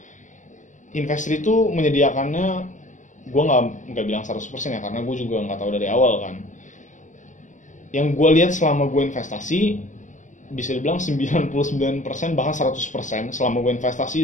Investri itu menyediakannya, gue nggak bilang 100% ya, karena gue juga nggak tahu dari awal kan. Yang gue lihat selama gue investasi, bisa dibilang 99% bahkan 100% selama gue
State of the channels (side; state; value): right; late; 0.36 ms